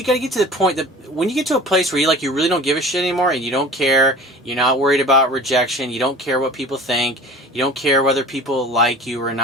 got to get to the point that when you get to a place where you really don't give a shit anymore, and you don't care, you're not worried about rejection, you don't care what people think, you don't care whether people like you or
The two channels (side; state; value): both; normal; correlation 0.41